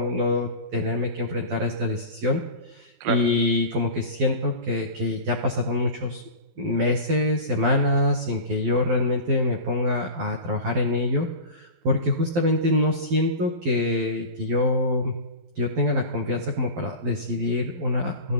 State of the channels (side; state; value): left; late; 12 ms